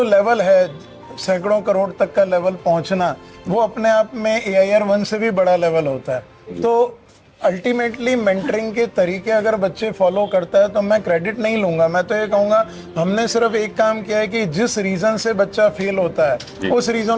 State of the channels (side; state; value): both; identical; correlation 1.00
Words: लेवल है, सैकड़ों करोड़ तक का लेवल पहुंचना, वो अपने आप में AIR 1 से भी बड़ा लेवल होता है। तो अल्टीमेटली मेंटरिंग के तरीके अगर बच्चे फॉलो करता है तो मैं क्रेडिट नहीं लूंगा। मैं तो ये कहूंगा हमने सिर्फ एक काम किया है कि जिस रीजन से बच्चा फेल होता है उस